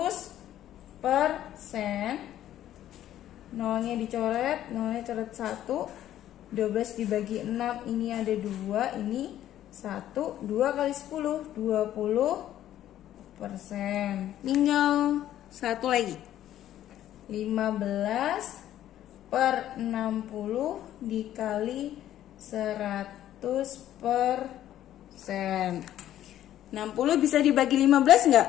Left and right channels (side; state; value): right; quieter; 12.2 dB